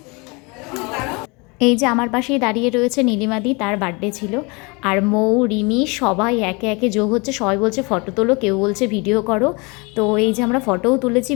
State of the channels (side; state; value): right; quieter; 28.4 dB